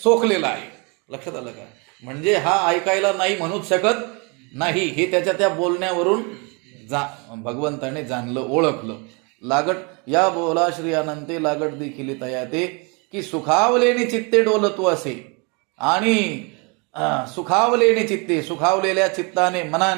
सोकलेला आहे. लक्षात आलं का? म्हणजे हा ऐकायला नाही म्हणूच शकत नाही, हे त्याच्या त्या बोलण्यावरून भगवंताने जाणलं, ओळखलं. लागट या बोला श्री अनंते लागट देखील तयाते की सुखावलेने चित्ते डोलतू असे. आणि सुखावलेने चित्ते, सुखावलेल्या चित्ताने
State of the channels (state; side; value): quieter; left; 31.6 dB